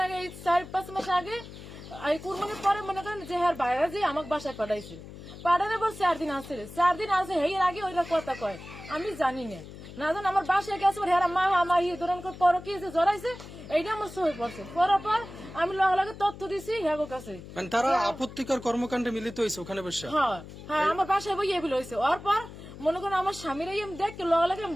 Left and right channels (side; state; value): left; noise; hum, 14 dB below the sound